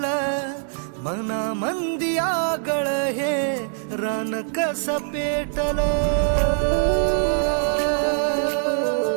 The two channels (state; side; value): silent; left; digital silence